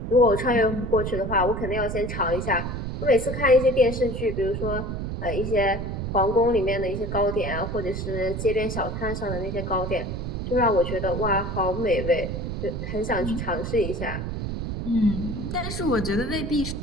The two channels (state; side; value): noise; right; rumble, 4 dB below the sound